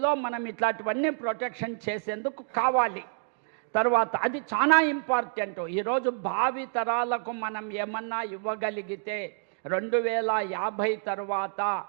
మనం ఇట్లాంటివన్నీ ప్రొటెక్షన్ చేసేందుకు కావాలి. తర్వాత అది చాలా ఇంపార్టెంట్. ఈరోజు భావి తరాలకు మనం ఏమన్నా ఇవ్వగలిగితే 2050 తర్వాత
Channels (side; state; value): left; silent; digital silence